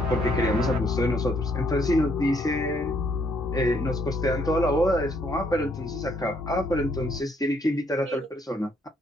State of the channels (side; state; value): both; normal; correlation 0.69